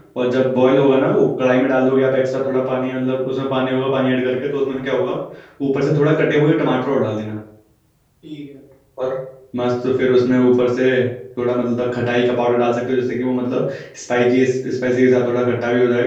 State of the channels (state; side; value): identical; both; correlation 1.00